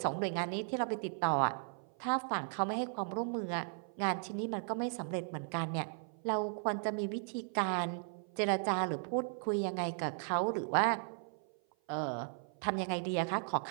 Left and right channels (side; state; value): left; silent; 54 dB below the other